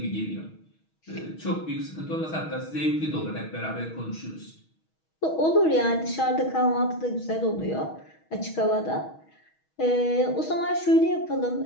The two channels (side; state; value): right; late; 6.3 ms